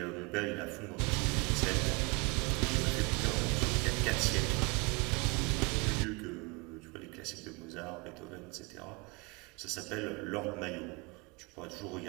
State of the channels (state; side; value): quieter; left; 29.7 dB